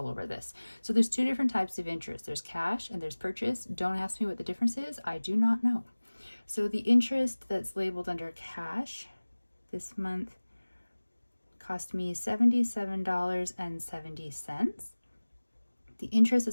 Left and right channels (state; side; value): inverted; both; correlation -1.00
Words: over this. So there's 2 different types of interest. There's cash and there's purchase. Don't ask me what the difference is. I do not know. So the interest that's labeled under cash this month cost me $77.70. The interest